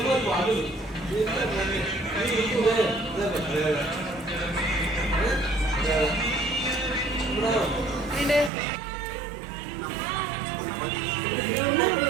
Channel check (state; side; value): drops out; left; at 8.5 s